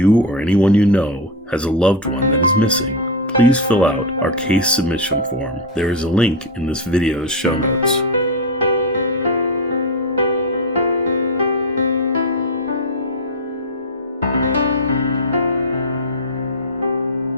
or anyone you know has a loved one that is missing, please fill out our case submission form. There is a link in this video's show notes.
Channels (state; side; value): normal; both; correlation 0.09